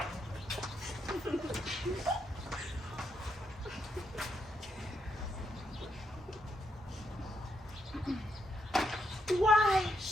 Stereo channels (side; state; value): both; normal; correlation 0.79